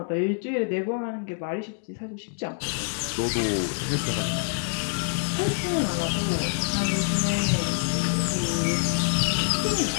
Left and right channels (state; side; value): silent; right; digital silence